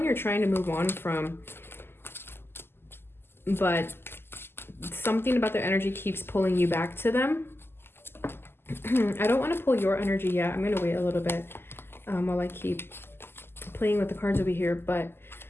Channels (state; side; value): late; right; 0.11 ms